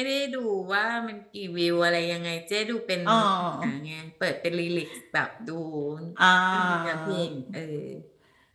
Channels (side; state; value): both; identical; correlation 1.00